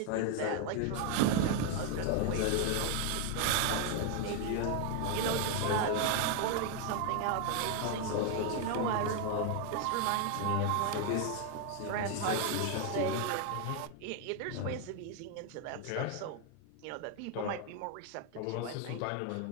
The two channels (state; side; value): different; both; correlation 0.00